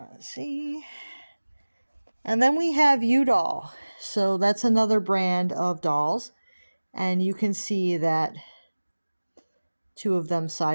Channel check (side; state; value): both; inverted; correlation -1.00